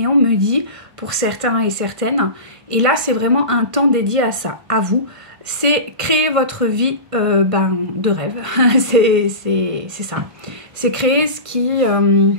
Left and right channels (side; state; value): left; late; 1.5 ms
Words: on me dit, pour certains et certaines. Et là, c'est vraiment un temps dédié à ça, à vous. C'est créer votre vie de rêve. c'est ça. C'est créer ce qui